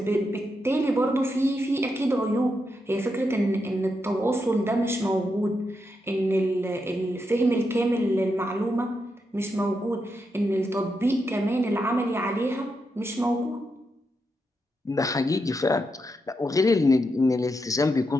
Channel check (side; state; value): both; normal; correlation 0.84